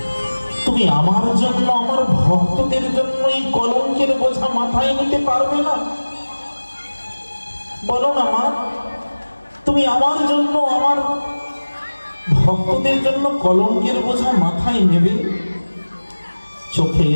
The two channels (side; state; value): both; inverted; correlation -1.00